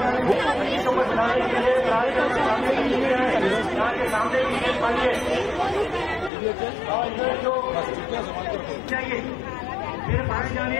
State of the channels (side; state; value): right; drops out; at 6.3 s